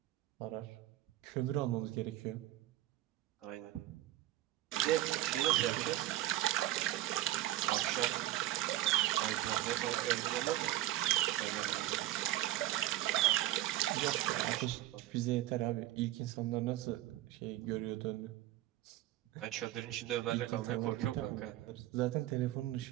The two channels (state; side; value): quieter; left; 15.3 dB